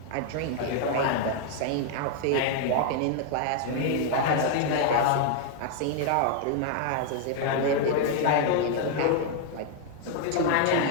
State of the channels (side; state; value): both; different; correlation 0.00